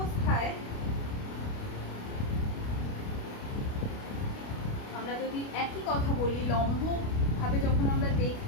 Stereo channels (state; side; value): late; right; 29 ms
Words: আমরা যদি একই কথা বলি, লম্ব ভাবে যখন আমরা